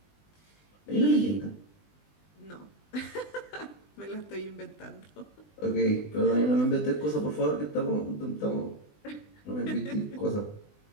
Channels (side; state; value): right; late; 20 ms